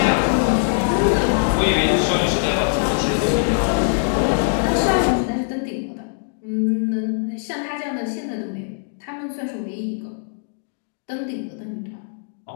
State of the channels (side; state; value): right; silent; digital silence